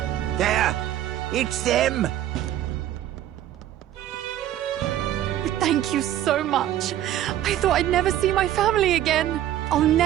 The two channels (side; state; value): left; quieter; 12.4 dB